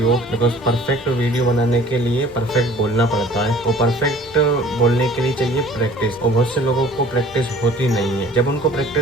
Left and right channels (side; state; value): left; noise; rumble, 24 dB below the sound